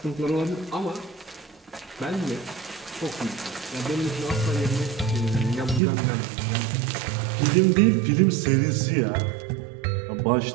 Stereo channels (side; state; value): left; drops out; at 5.8 s